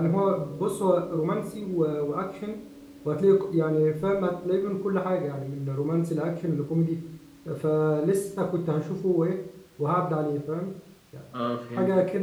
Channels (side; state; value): both; identical; correlation 1.00